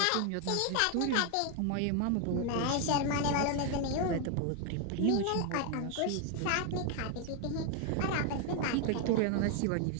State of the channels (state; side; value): different; both; correlation 0.01